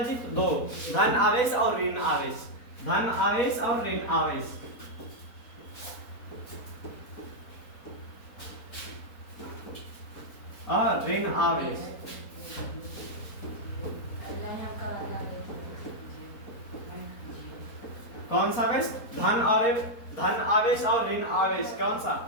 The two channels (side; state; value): right; late; 4.1 ms